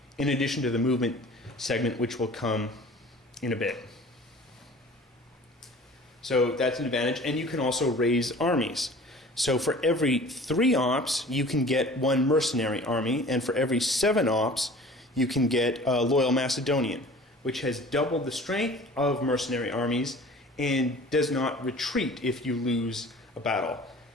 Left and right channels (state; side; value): normal; both; correlation 0.45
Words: in addition to the movement segment, which will come in a bit. So that's an advantage, and you can also raise armies. So for every 3 ops, you can get 1 mercenary army, and for every 7 ops, you can get a loyal Macedonian, which has doubled the strength of mercenary armies and does not retreat if you lose a battle.